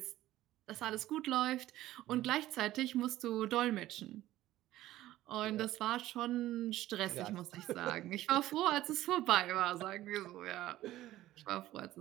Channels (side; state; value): left; quieter; 15.0 dB